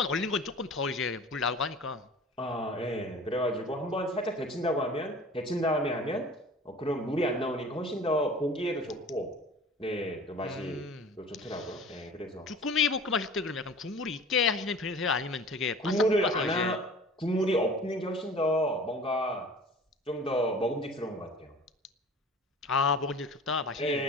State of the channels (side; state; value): both; normal; correlation 0.43